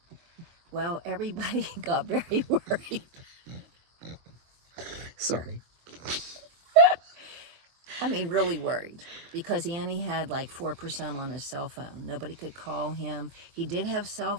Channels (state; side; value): late; left; 24 ms